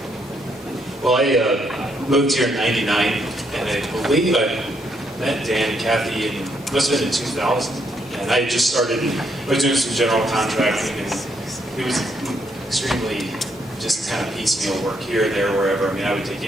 Well, I moved here in '99, and I believe I met Dan and Kathy must have been in 2000. And I just started, I was doing some general contracting, and it was extremely just kind of piecemeal work here, there, wherever. I mean, I would take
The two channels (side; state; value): both; normal; correlation 0.74